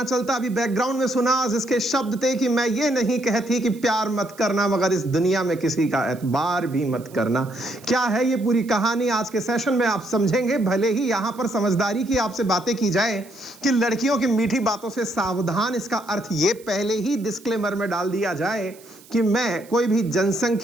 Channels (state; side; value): noise; right; hiss, 24 dB below the sound